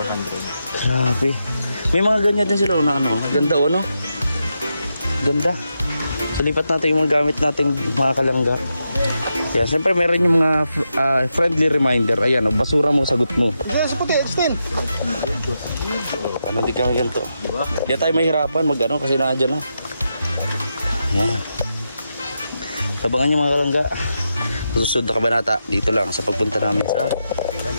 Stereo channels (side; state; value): both; inverted; correlation -0.86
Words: Grabe. May mga ganyan din sila na ano. Ganda o, no? Ganda. So, lipat natin yung mga gamit nating mga kalangga. Kaya siyempre meron yung mga friendly reminder. Ayan, o, basura mo, sagot mo. Diyan sa puti, extend. Ano, di kami ganito. Di tayo mahirapan mag-ano kasi nandiyan na. Ayan. Tabangan yung mga kalangga. Susunod na kabanata dito lang sa pagpunta namin sa